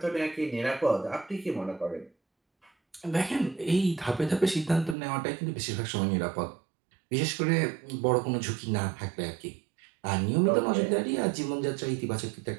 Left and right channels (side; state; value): left; drops out; at 5.0 s